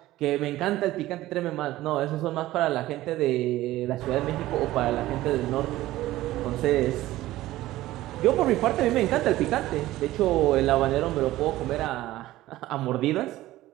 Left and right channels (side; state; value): left; quieter; 16.0 dB